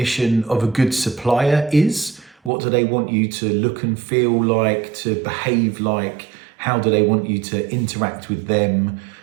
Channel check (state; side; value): drops out; left; at 2.5 s